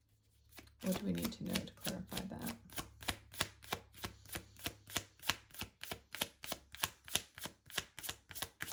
What do we need to know to clarify that?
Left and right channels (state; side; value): identical; both; correlation 1.00